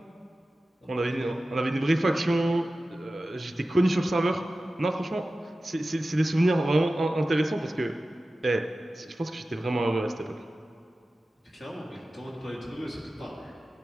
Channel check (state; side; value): normal; both; correlation 0.95